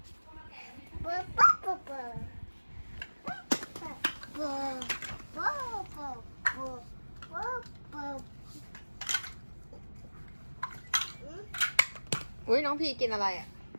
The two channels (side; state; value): both; inverted; correlation -1.00